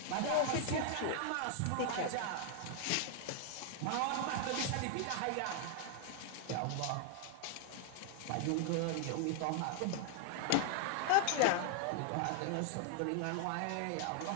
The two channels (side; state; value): both; different; correlation 0.00